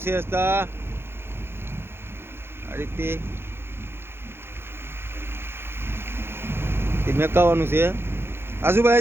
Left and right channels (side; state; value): left; late; 0.11 ms